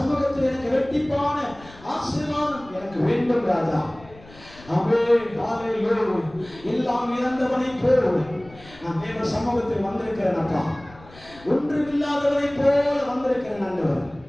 எனக்கு இரட்டிப்பான ஆசீர்வாதம் எனக்கு வேண்டும் ராஜா. ஆமென். ஹல்லேலூயா. எல்லாம் இழந்தவனை போல் நான் தேவ சமூகத்தில் வந்திருக்கிறேன் அப்பா. ஒன்றுமில்லாதவனை போல வந்திருக்கிறேன் ஆண்டவர்.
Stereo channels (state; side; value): noise; left; rumble, 21 dB below the sound